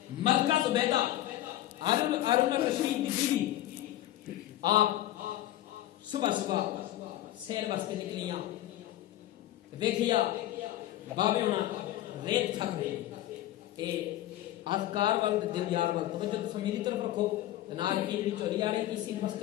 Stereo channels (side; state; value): right; quieter; 14.2 dB